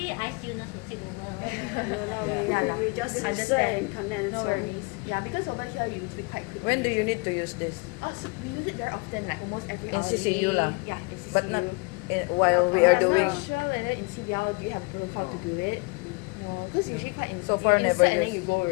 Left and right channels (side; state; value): right; quieter; 30.4 dB